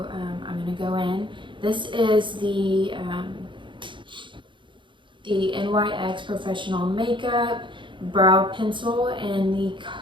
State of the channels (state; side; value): late; left; 0.23 ms